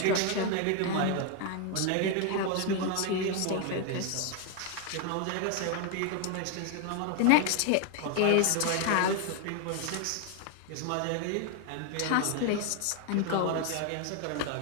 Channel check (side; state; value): both; different; correlation 0.01